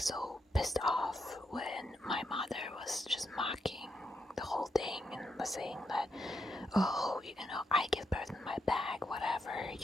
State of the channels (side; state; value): both; normal; correlation 0.81